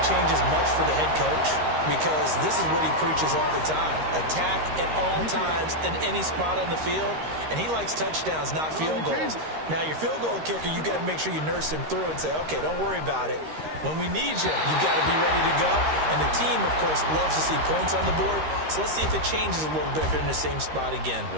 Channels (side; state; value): left; late; 13 ms